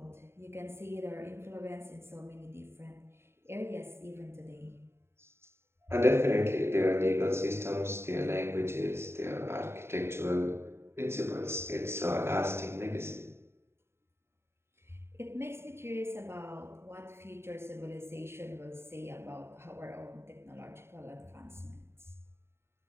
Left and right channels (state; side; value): late; left; 0.12 ms